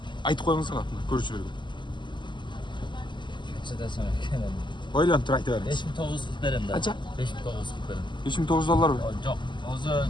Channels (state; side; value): late; right; 0.22 ms